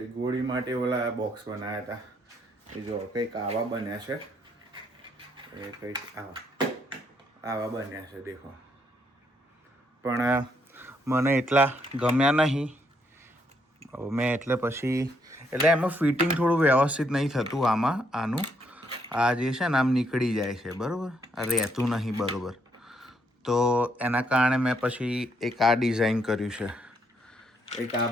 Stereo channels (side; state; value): both; normal; correlation 0.73